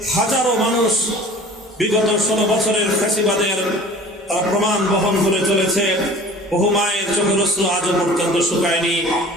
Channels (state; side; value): normal; both; correlation 0.44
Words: হাজারো মানুষ বিগত 16 বছরের ফ্যাসিবাদের তারা প্রমাণ বহন করে চলেছে। বহু মায়ের চোখের অশ্রু আজও পর্যন্ত শুকায়নি।